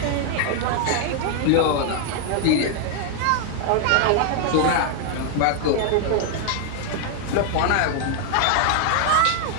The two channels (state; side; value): different; both; correlation 0.00